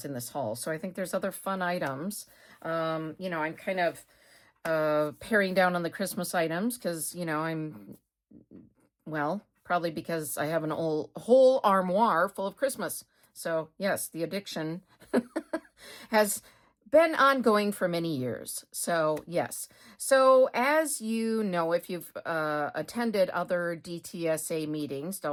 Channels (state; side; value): identical; both; correlation 1.00